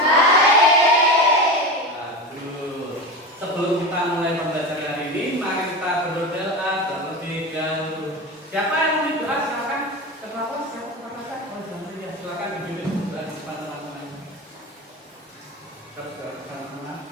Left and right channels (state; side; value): normal; both; correlation 0.25